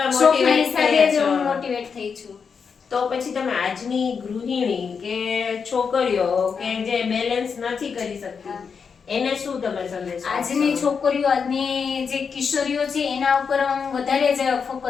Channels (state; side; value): quieter; right; 6.0 dB